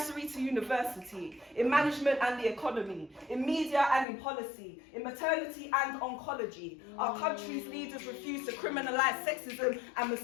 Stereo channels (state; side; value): drops out; right; at 4.0 s